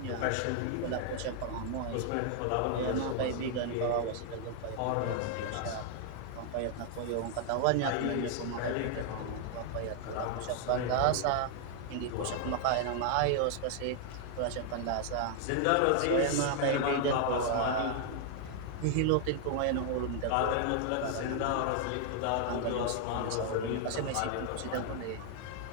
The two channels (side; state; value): both; different; correlation 0.00